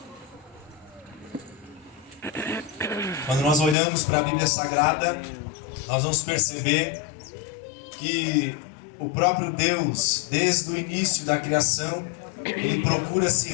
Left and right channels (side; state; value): right; drops out; at 3.8 s